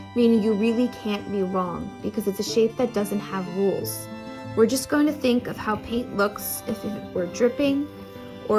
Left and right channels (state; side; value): identical; both; correlation 1.00